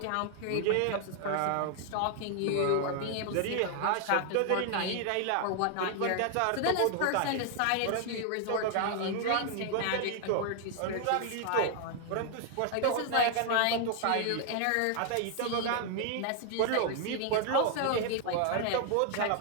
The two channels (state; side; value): different; both; correlation 0.00